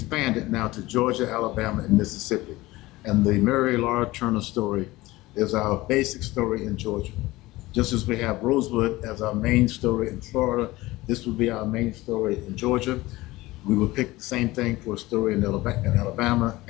now to Georgia, Alabama, and Mississippi. And the Mary Laura Turner story is our basic story in Georgia. Just as we have Rosewood as our main story in Florida, this will be our main story in Georgia. We will pick the same thing for a story in Alabama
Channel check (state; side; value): quieter; right; 19.1 dB